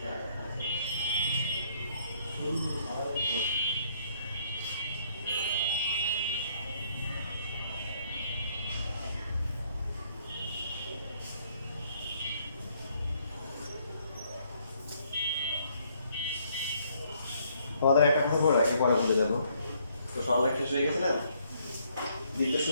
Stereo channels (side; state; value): both; inverted; correlation -0.68